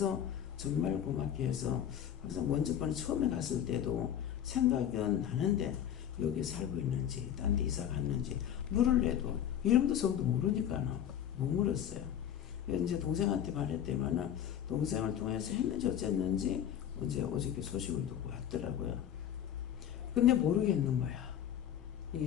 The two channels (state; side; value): quieter; right; 10.0 dB